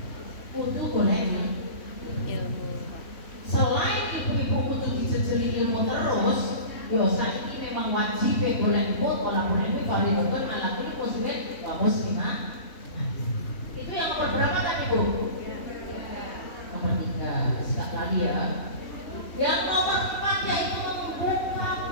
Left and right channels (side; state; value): right; late; 3.1 ms